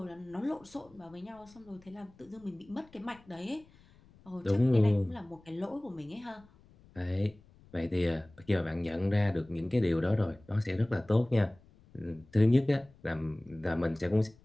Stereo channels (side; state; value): left; noise; rumble, 27 dB below the sound